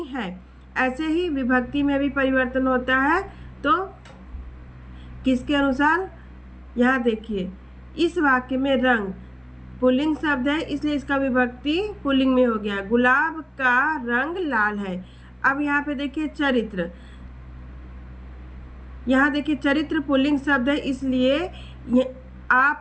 है। ऐसे ही विभक्ति में भी परिवर्तन होता है। तो किसके अनुसार, यहाँ देखिए इस वाक्य में रंग पुल्लिंग शब्द है, इसलिए इसका विभक्ति पुल्लिंग में हो गया, गुलाब का रंग लाल है। अब यहाँ पे देखिए चरित्र, यहाँ देखिए चरित्र पुल्लिंग शब्द है, इसलिए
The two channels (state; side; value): identical; both; correlation 1.00